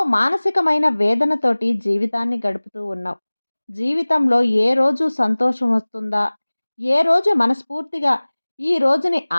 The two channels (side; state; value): both; inverted; correlation -1.00